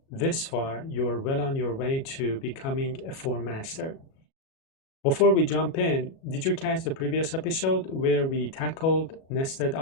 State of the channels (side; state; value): right; late; 37 ms